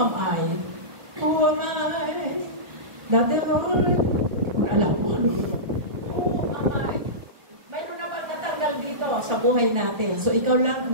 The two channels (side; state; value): left; late; 1.4 ms